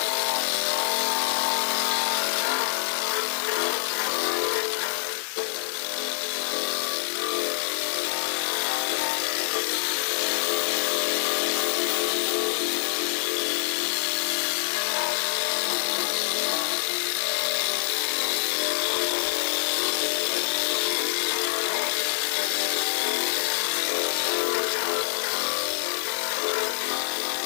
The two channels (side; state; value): right; silent; digital silence